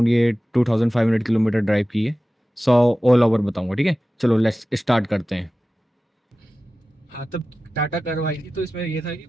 ये 2500 किलोमीटर ड्राइव की है। 100 ऑल ओवर बताऊंगा, ठीक है। चलो लेट्स स्टार्ट करते हैं। हाँ, तब टाटा कर्व आई थी तो इसमें ये था कि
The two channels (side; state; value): both; normal; correlation 0.95